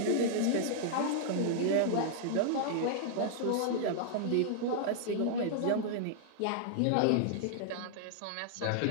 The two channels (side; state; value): both; different; correlation -0.01